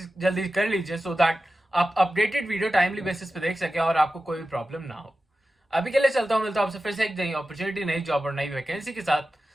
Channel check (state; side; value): normal; both; correlation 0.94